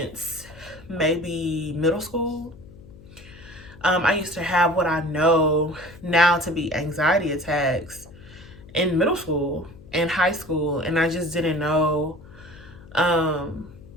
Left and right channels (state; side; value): noise; left; hum, 20 dB below the sound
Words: maybe middle school. I used to have what I know now to be anxiety attacks in middle school and high school, and I just didn't know um,